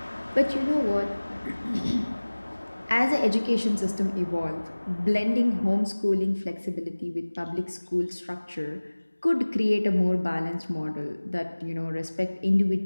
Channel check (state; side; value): inverted; both; correlation -1.00